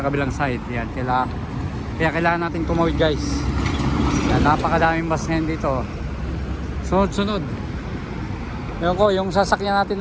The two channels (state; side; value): identical; both; correlation 1.00